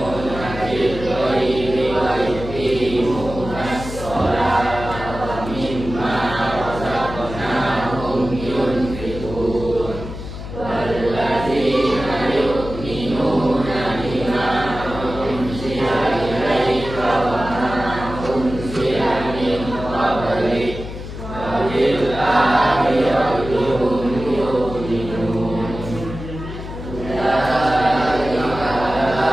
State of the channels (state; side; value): noise; left; hum, 10 dB below the sound